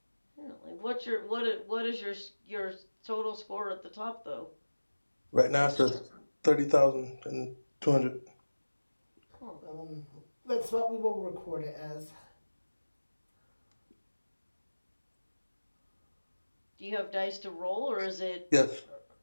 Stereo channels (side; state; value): both; inverted; correlation -1.00